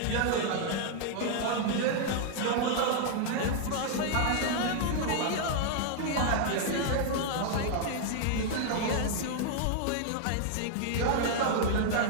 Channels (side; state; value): both; different; correlation 0.00